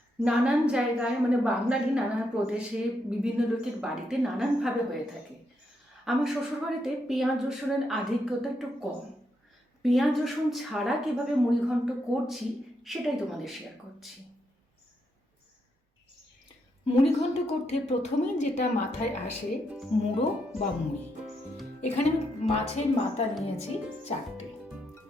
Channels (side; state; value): both; normal; correlation 0.80